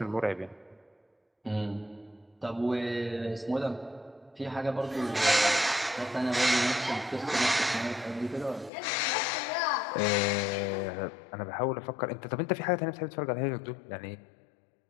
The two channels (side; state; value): right; drops out; at 8.7 s